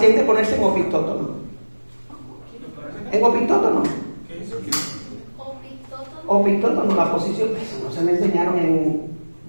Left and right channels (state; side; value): inverted; both; correlation -1.00